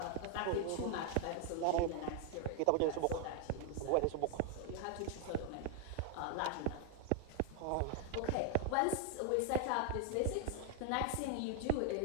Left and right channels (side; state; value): both; different; correlation 0.00